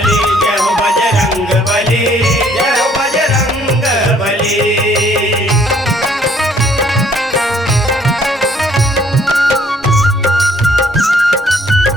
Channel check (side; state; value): both; normal; correlation 0.62